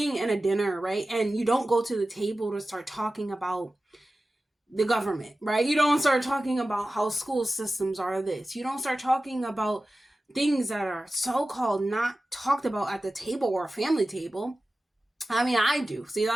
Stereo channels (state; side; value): normal; both; correlation 0.95